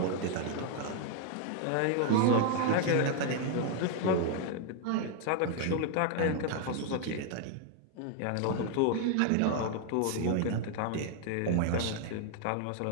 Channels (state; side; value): different; both; correlation 0.00